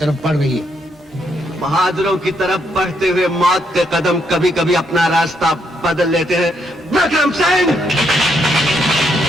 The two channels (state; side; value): normal; both; correlation 0.76